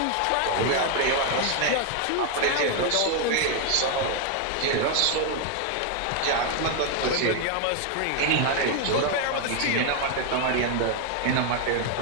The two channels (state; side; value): different; both; correlation 0.01